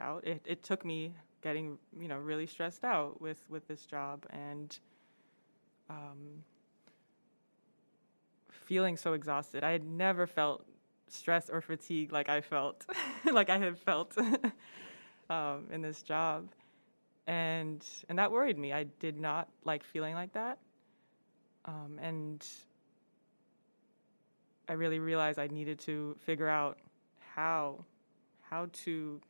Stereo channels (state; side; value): inverted; both; correlation -1.00